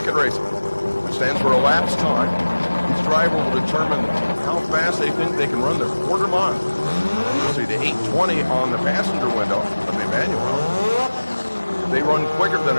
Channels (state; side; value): inverted; both; correlation -1.00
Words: racing, which stands for elapsed time. Each driver will determine how fast they think they can run their quarter mile. You'll see the 8:20 on the passenger window of Emmanuel. If they run quicker than